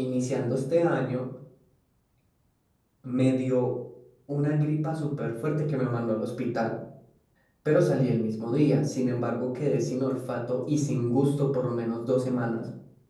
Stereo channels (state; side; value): identical; both; correlation 1.00